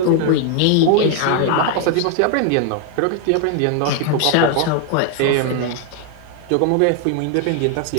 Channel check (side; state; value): both; different; correlation 0.00